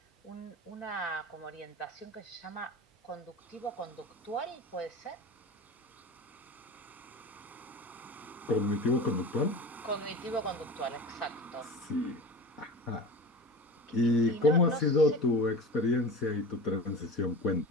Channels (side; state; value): both; normal; correlation 0.33